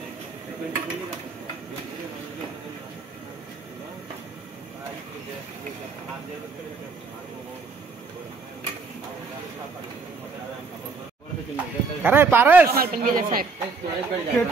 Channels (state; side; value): quieter; left; 4.4 dB